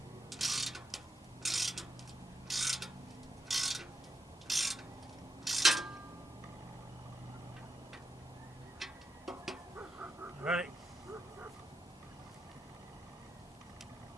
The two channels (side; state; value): both; normal; correlation 0.86